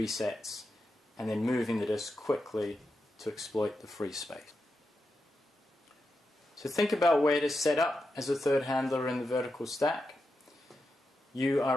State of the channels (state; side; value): normal; both; correlation 0.88